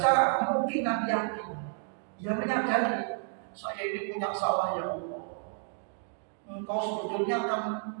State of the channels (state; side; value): silent; left; 57 dB below the other